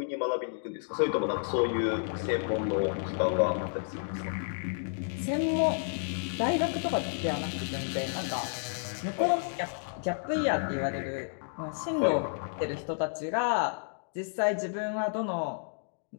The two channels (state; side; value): silent; right; digital silence